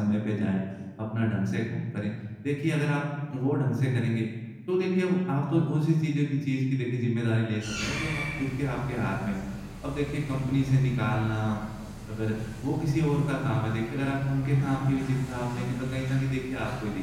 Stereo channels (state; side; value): identical; both; correlation 1.00